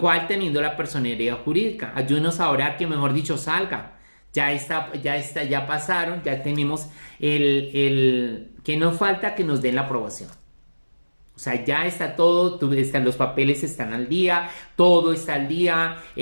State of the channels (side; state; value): both; inverted; correlation -1.00